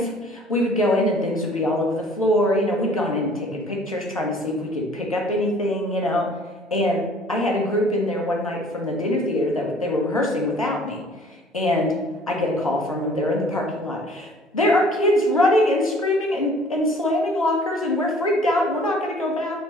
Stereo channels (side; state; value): both; normal; correlation 0.53